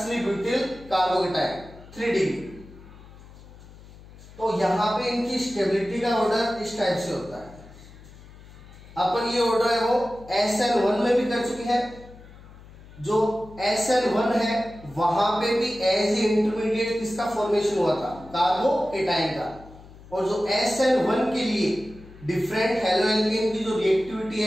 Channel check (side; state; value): left; noise; hum, 20 dB below the sound